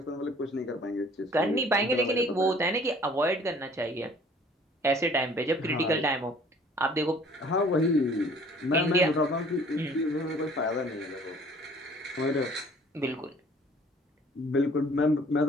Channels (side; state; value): both; normal; correlation 0.53